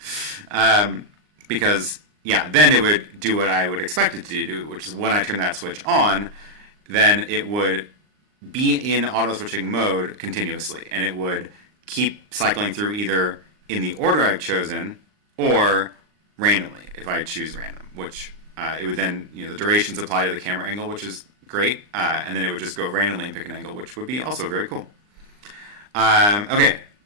Because, yeah, then it would do what I would expect it to do, which is when I turn that switch on, then it would be in auto switching mode continuously, and it would keep cycling through either in the order I've chosen or randomly if I choose random, which it would then, the durations apply to the camera angle, which is great, and then it would just go randomly and pick an angle, which would be also very cool. Okay,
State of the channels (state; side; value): late; left; 39 ms